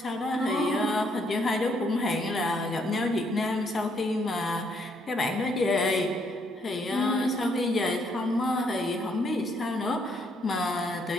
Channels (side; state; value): both; normal; correlation 0.71